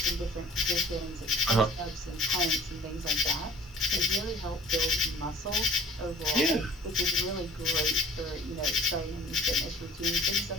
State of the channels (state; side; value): normal; both; correlation 0.50